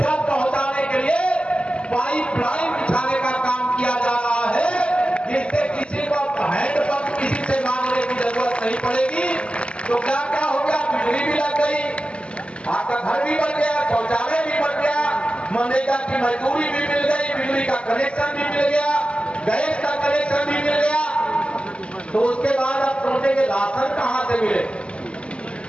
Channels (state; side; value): late; right; 0.056 ms